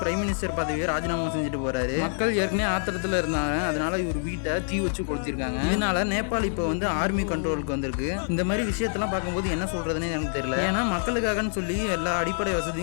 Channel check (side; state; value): right; silent; digital silence